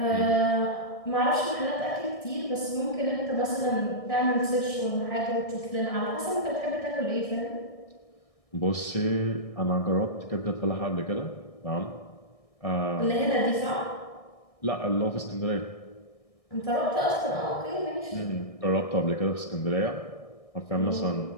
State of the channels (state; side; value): late; right; 1.6 ms